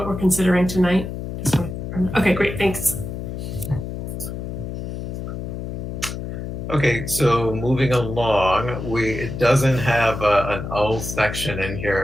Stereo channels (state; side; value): noise; left; hum, 6 dB below the sound